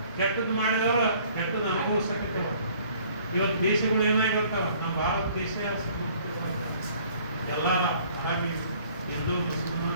ಕೆಟ್ಟದ್ದು ಮಾಡಿದವರು ಕೆಟ್ಟದ್ದು ಅನುಭವಿಸಕತ್ತೇವ. ಇವತ್ತು ದೇಶಗಳು ಏನಾಗಿರ್ತಾವ, ನಮ್ಮ ಭಾರತ ದೇಶ ಎಲ್ಲ ಹಾಗೆ ಹಿಂದೂ ಮುಸ್ಲಿಮ್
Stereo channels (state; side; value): inverted; both; correlation -0.56